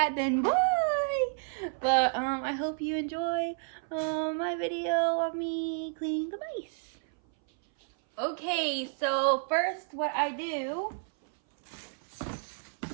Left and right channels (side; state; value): left; silent; 57 dB below the other